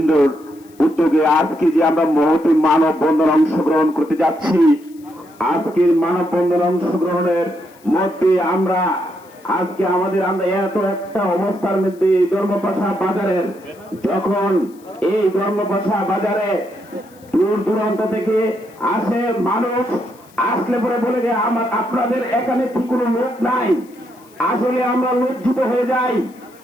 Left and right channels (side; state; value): left; noise; hiss, 28 dB below the sound